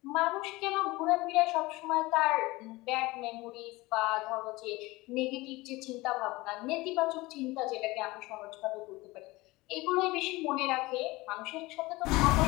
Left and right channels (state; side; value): quieter; right; 21.2 dB